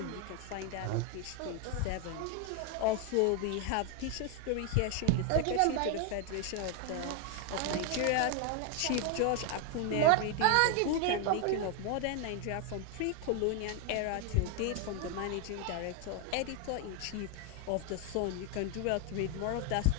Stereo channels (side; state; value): both; different; correlation 0.01